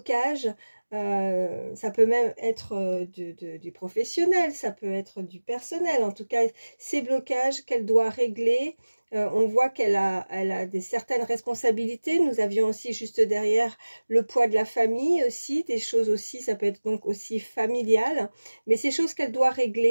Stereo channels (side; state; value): both; inverted; correlation -1.00